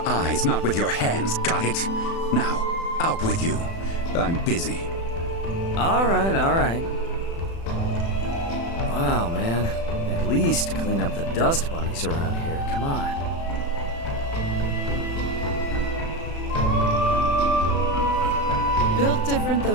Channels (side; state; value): right; late; 36 ms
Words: eyes, not with your hands, got it? Now, out with you. I'm busy. All right, all right. Wow, man. At least clean up the dust bunnies around here. Come on. Built different though